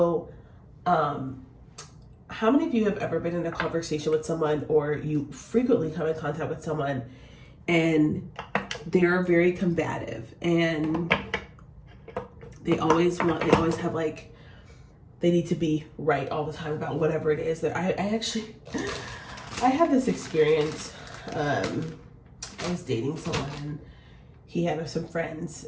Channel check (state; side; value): identical; both; correlation 1.00